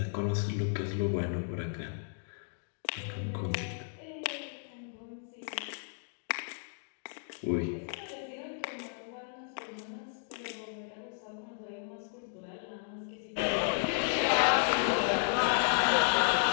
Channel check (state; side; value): silent; right; digital silence